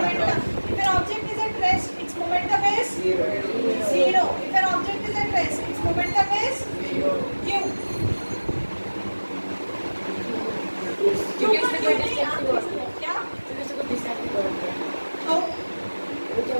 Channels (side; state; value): both; inverted; correlation -1.00